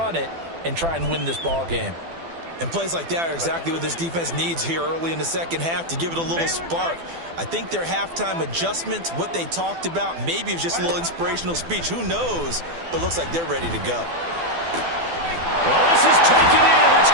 it, and try and win this ball game. And plays like that are exactly what this defense needs here early in the second half to give it a little spark. I think their halftime adjustment, what they talked about, maybe it was just a little inspirational speech. Who knows? But looks like they're ready to go. Well, this is taken in. It's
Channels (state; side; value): late; left; 12 ms